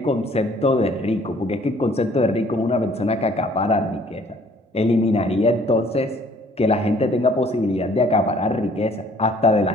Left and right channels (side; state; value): both; normal; correlation 0.58